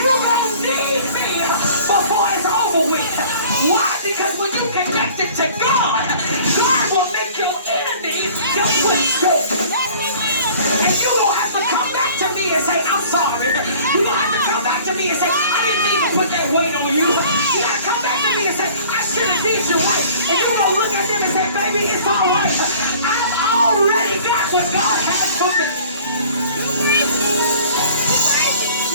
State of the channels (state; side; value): inverted; both; correlation -0.49